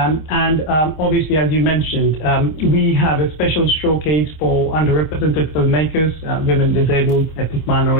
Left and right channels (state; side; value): late; right; 26 ms